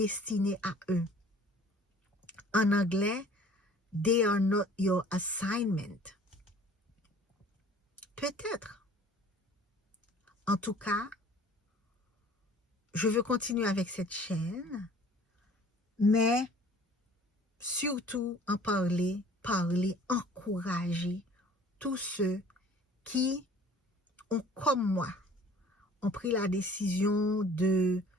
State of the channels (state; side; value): normal; both; correlation 0.51